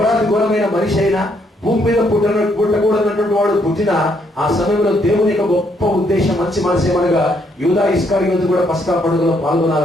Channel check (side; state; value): both; normal; correlation 0.72